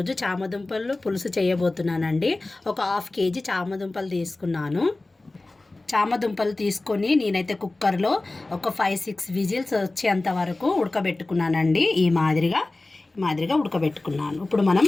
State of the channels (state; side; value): quieter; right; 3.0 dB